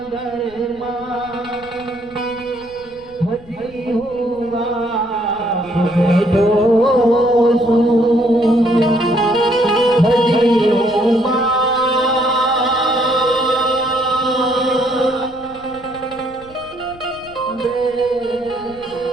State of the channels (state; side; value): noise; left; rumble, 23 dB below the sound